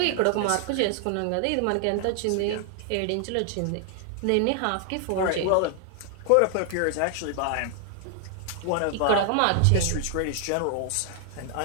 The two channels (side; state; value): both; different; correlation 0.00